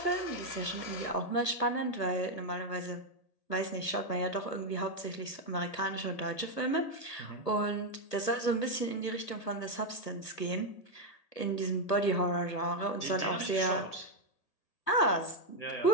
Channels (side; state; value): right; late; 1.4 ms